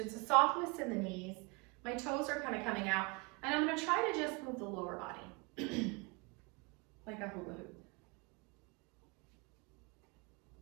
a softness in the knees. My toes are kind of coming out. And I'm going to try to just move the lower body. Like a hula hoop.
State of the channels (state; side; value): quieter; left; 28.0 dB